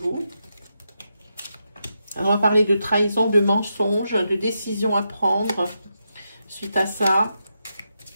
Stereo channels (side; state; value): both; inverted; correlation -0.85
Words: On va parler de trahison, de mensonge, de décision à prendre suite à ça.